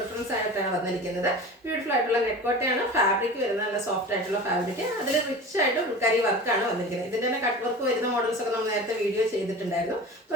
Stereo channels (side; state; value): both; normal; correlation 0.34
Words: ആയിട്ടാണ് വന്നിരിക്കുന്നത്. ബ്യൂട്ടിഫുൾ ആയിട്ടുള്ള നെക്കോട്ടയാണ് ഫാബ്രിക് വരുന്ന, നല്ല സോഫ്റ്റ് ആയിട്ടുള്ള ഫാബ്രിക്. അതിൽ റിച്ച് ആയിട്ട് ഫുൾക്കാരി വർക്കാണ് വന്നിരിക്കുന്നത്. ഇതിന്റെ തന്നെ കട്ട് വർക്ക് വരുന്ന മോഡൽസ് ഒക്കെ നമ്മൾ നേരത്തെ വീഡിയോ ചെയ്തിട്ടുണ്ടായിരുന്നു.